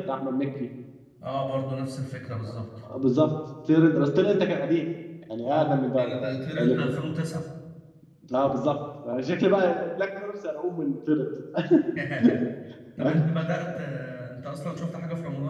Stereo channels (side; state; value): both; identical; correlation 1.00